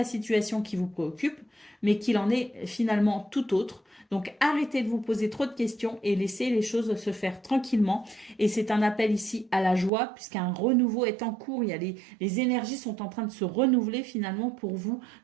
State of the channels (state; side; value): drops out; left; at 9.9 s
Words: situation qui vous préoccupe, mais qu'il en est finalement tout autre. Donc arrêtez de vous poser trop de questions et laissez les choses se faire tranquillement. Et c'est un appel ici à la joie puisqu'un renouveau est en cours. Il y a les énergies sont en train de se renouveler finalement pour vous.